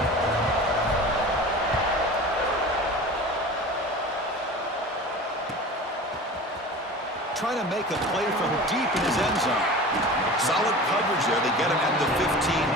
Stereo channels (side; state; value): both; normal; correlation 0.36